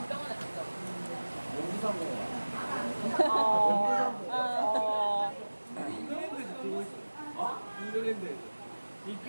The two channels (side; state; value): both; inverted; correlation -1.00